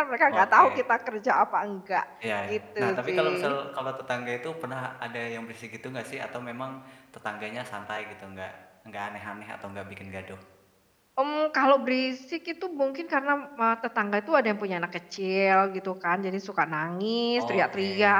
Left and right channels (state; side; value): identical; both; correlation 1.00